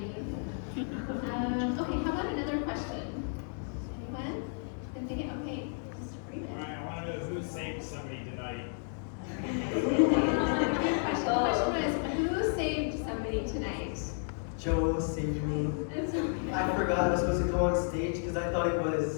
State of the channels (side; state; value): right; silent; 56 dB below the other